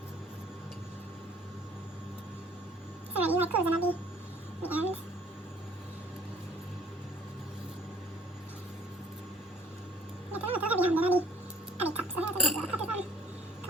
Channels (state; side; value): normal; both; correlation 0.56